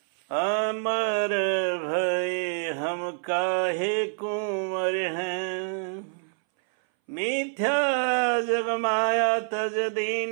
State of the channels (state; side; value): silent; left; 60 dB below the other